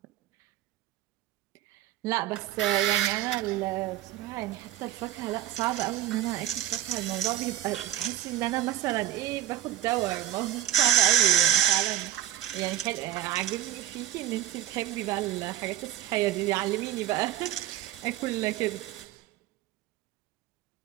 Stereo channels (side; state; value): left; quieter; 12.3 dB